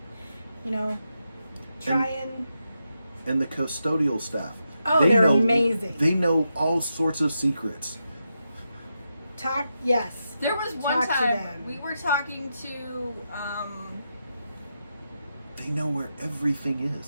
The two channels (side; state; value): both; inverted; correlation -0.86